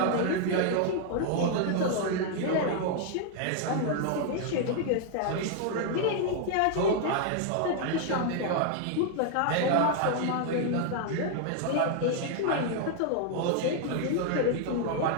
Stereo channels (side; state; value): both; different; correlation 0.00